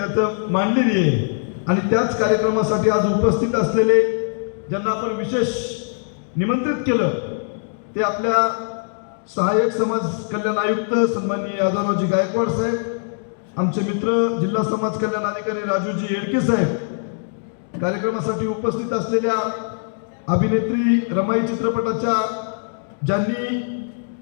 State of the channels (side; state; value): right; silent; digital silence